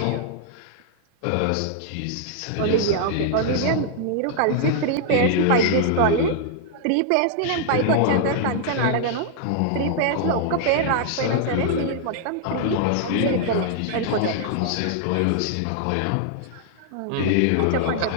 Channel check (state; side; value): different; both; correlation -0.01